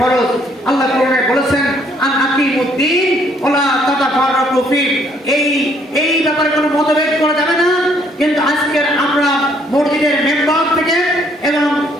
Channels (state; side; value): normal; both; correlation 0.65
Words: আল্লাহ কোরআনে বলেছেন, আন আকিমুদ্দিন ওয়ালা তাতাফাররাকু ফি, এই ব্যাপারে কোনো মতভেদ করা যাবে না। কিন্তু আজকের আমরা মসজিদের মেম্বার থেকে এবং